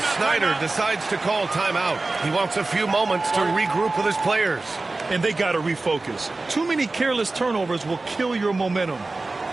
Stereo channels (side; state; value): left; quieter; 3.3 dB